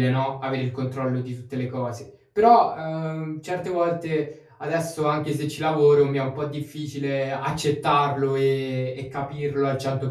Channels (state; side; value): identical; both; correlation 1.00